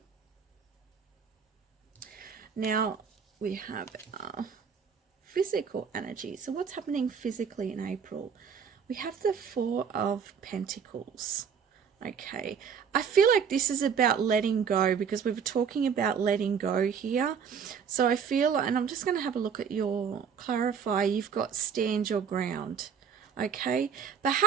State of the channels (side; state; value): left; quieter; 6.9 dB